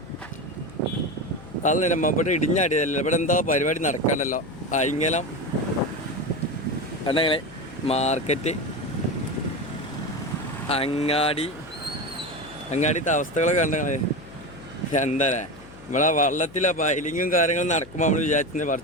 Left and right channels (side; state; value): left; noise; hum, 19 dB below the sound